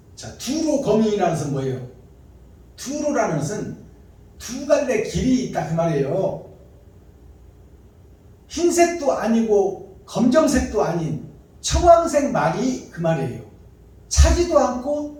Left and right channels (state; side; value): identical; both; correlation 1.00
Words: 자, 두로 거민이라는 것은 뭐예요? 두로라는 것은 두 갈래 길이 있다 그 말이에요. 흰색도 아니고 검정색도 아닌 청황색 말이 그 말이에요. 차지도 않고